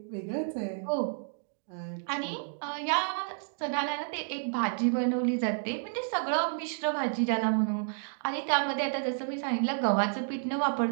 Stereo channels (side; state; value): left; silent; digital silence